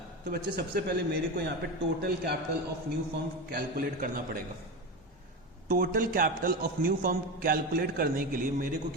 तो बच्चे सबसे पहले मेरे को यहाँ पे total capital of new firm calculate करना पड़ेगा। Total capital of new firm calculate करने के लिए मेरे को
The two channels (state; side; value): normal; both; correlation 0.20